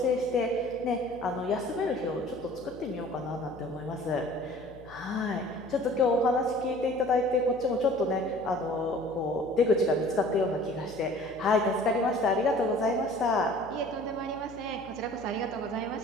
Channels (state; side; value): noise; left; hum, 21 dB below the sound